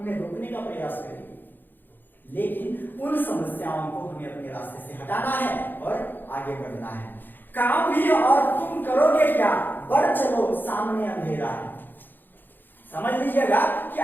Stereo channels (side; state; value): right; late; 0.091 ms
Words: रोकने का प्रयास करेंगे। लेकिन उन समस्याओं को हमें अपने रास्ते से हटाना है और आगे बढ़ना है। काम भी और तुम करोगे क्या, बढ़ चलो सामने अंधेरा है। समझ लीजिएगा कि